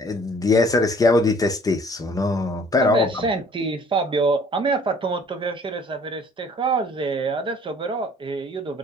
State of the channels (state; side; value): normal; both; correlation 0.54